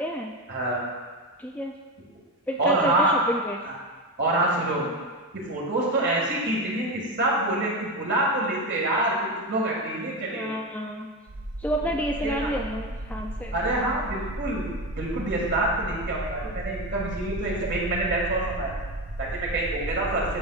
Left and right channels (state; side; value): normal; both; correlation 0.18